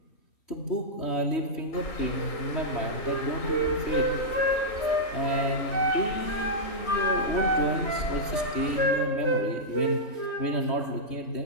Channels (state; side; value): late; right; 3.1 ms